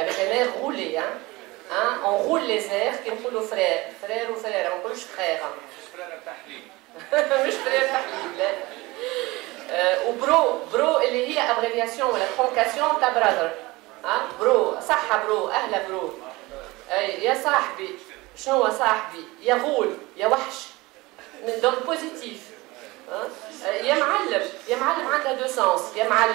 un air roulé on roule les airs كي نقولوا فرير وفريره ما نقولوش فرير فريره تحليل مش فرير تحليل لا وبرو اللي هي ابريفياسيون ولا ترونكاسيون تاع براذر برو صحة برو أهلا برو يا صاحبي شنو هو صاحبي يا غول يا وحش من دون بوزيتيف يا معلم عندها دو سونس يا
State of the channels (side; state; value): left; quieter; 21.8 dB